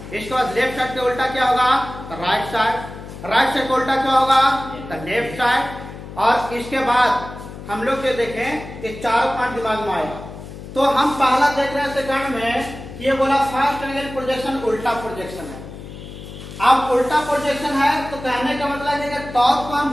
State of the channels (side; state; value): left; noise; hum, 13 dB below the sound